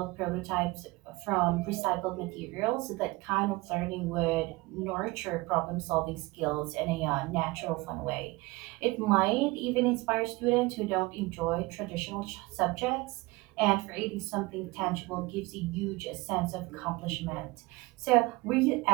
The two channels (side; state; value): left; quieter; 22.4 dB